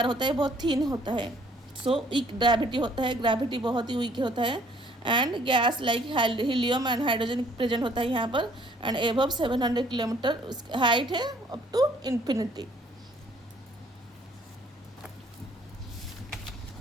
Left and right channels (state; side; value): normal; both; correlation 0.61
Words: होता है बहुत थिन होता है। सो वीक ग्रेविटी होता है, ग्रेविटी बहुत ही वीक होता है। And gas like helium and hydrogen present होता है यहाँ पर। एंड एबव 700 किलोमीटर हाइट है अप टू इन्फिनिटी।